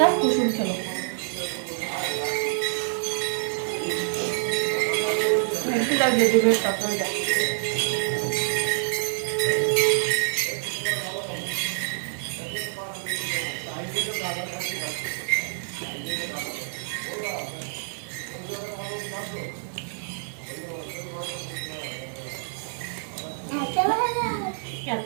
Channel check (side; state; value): left; silent; digital silence